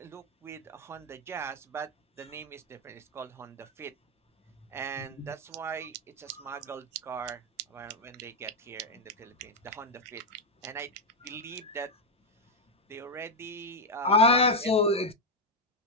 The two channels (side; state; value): both; normal; correlation 0.01